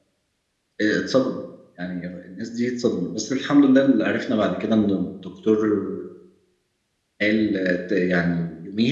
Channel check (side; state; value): both; identical; correlation 1.00